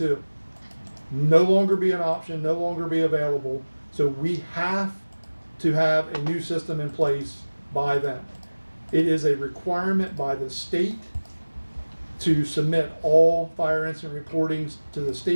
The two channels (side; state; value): both; inverted; correlation -1.00